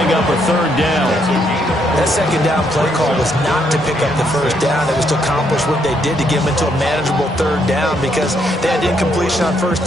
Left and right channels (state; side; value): normal; both; correlation 0.74